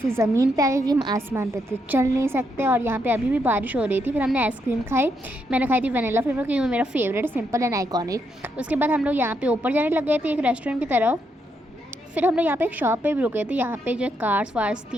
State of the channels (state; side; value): normal; both; correlation 0.78